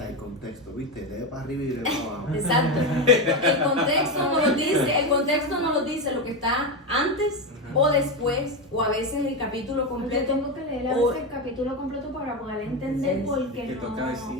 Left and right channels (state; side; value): normal; both; correlation 0.13